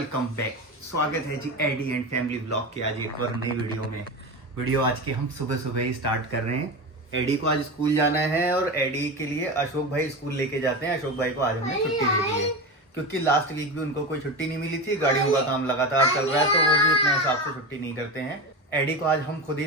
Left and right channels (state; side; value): normal; both; correlation 0.23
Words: back. स्वागत है जी एडी एंड फैमिली ब्लॉग के आज एक और नई वीडियो आज के हम सुबह सुबह ही स्टार्ट कर रहे हैं। एडी को आज स्कूल जाना है और एडी के लिए अशोक भाई स्कूल लेके जाते हैं। अशोक भाई को आज हमने छुट्टी दे दी है क्योंकि लास्ट वीक भी उनको कोई छुट्टी नहीं मिली थी। गाड़ियों का काम लगातार चल रहा है तो वो भी अपने हिसाब से छुट्टी नहीं करते हैं। एडी को आज हम खुद ही